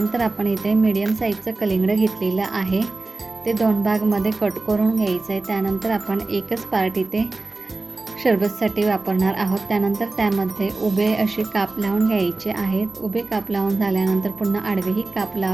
आपण इथे मीडियम साईजचं कलिंगड घेतलेलं आहे. ते 2 भागमध्ये कट करून घ्यायचं आहे. त्यानंतर आपण एकच पार्ट इथे शरबतसाठी वापरणार आहोत. त्यानंतर त्यामध्ये उभे असे काप लावून घ्यायचे आहेत. उभे काप लावून झाल्यानंतर पुन्हा आडवेही काप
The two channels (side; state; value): left; quieter; 3.3 dB